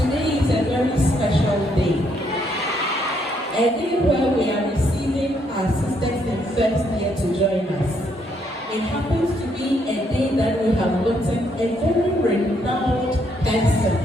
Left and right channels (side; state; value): both; normal; correlation 0.73